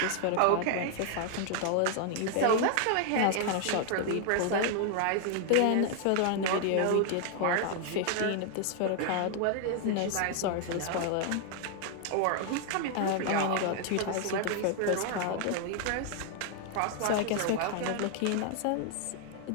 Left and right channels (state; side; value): different; both; correlation 0.00